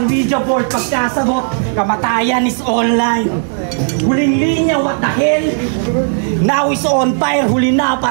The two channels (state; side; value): silent; left; 69 dB below the other